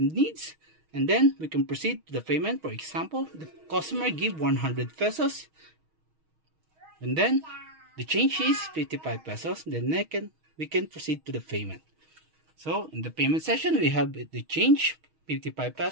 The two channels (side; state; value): left; late; 6.3 ms